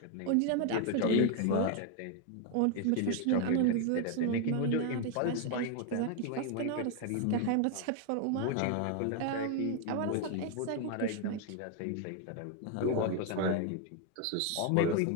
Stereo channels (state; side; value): different; both; correlation 0.01